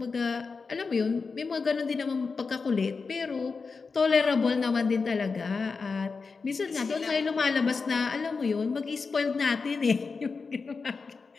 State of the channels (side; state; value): right; quieter; 4.7 dB